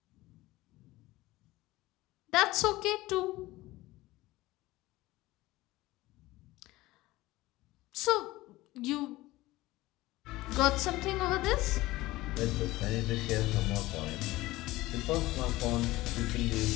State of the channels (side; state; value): right; quieter; 18.4 dB